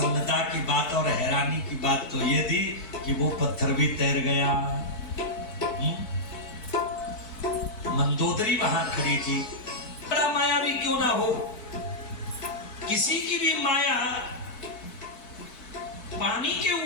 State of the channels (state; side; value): late; right; 4.6 ms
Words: की बात और हैरानी की बात तो ये थी कि वो पत्थर भी तैर गया। मंदोदरी वहां खड़ी थी। बड़ा मायावी क्यों ना हो, किसी की भी माया पानी के